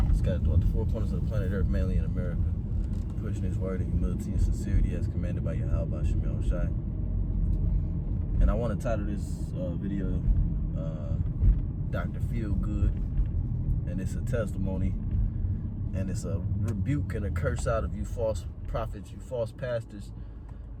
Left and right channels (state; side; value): identical; both; correlation 1.00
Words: Scattered throughout the four corners of the planet Earth, mainly in America. Pushing his word in humility and sincerity as commanded by Yahweh Ba'ashem Yahweh Shai. And I want to title this video Dr. Feelgood, and it's a testimony, and it's a rebuke and a curse out of you false prophets, you false pastors